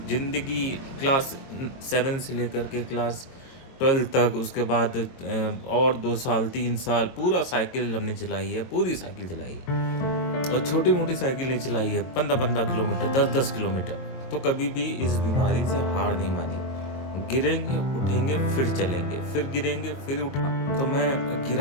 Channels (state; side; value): late; right; 22 ms